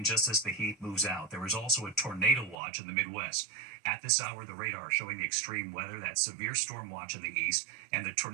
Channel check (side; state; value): left; drops out; at 2.6 s